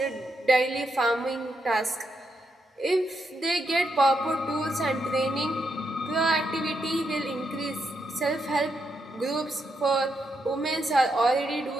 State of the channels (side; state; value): both; normal; correlation 0.81